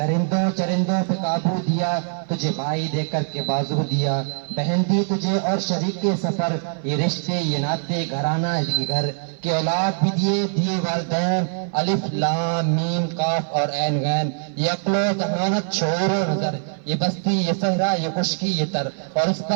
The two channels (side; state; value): left; silent; 58 dB below the other